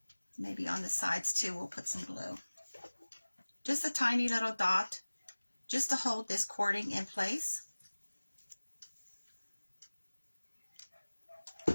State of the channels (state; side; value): inverted; both; correlation -1.00